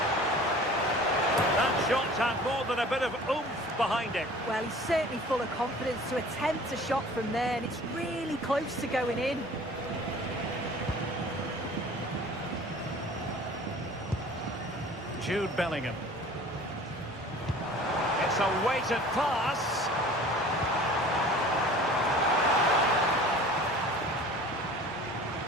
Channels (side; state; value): both; normal; correlation 0.45